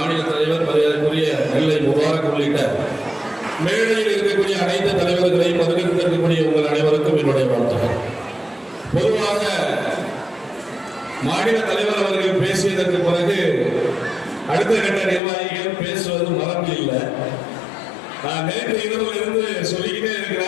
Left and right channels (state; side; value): drops out; right; at 15.2 s